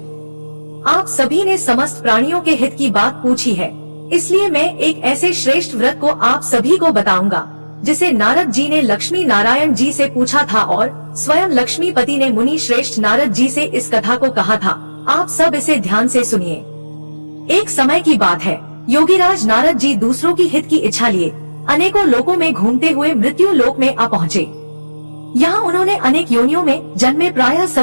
आप सभी ने समस्त प्राणियों के हित की बात पूछी है, इसलिए मैं एक ऐसे श्रेष्ठ व्रत को आप सभी को बताऊंगा जिसे नारद जी ने लक्ष्मी नारायण जी से पूछा था और स्वयं लक्ष्मीपति ने मुनि श्रेष्ठ नारद जी से इस कथा को कहा था। आप सब इसे ध्यान से सुनिए। एक समय की बात है, योगीराज नारद जी दूसरों की हित की इच्छा लिए अनेकों लोकों में घूमते हुए मृत्यु लोक में आ पहुँचे। यहाँ उन्होंने अनेक योनियों में जन्मे प्रायः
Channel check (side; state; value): both; inverted; correlation -1.00